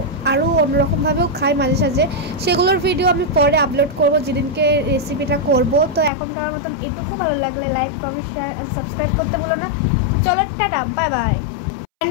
আরও অন্যরকমভাবেও খাই মাঝে সাঝে, সেগুলোর ভিডিও আমি পরে আপলোড করব যেদিনকে রেসিপিটা করব। তো এখনকার মতন এটুকু, ভালো লাগলে like comment share and subscribe করতে ভুলো না। তো চলো tata, bye bye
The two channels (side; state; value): right; drops out; at 6.1 s